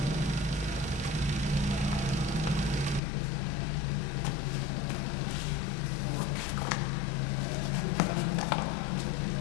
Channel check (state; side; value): drops out; right; at 3.0 s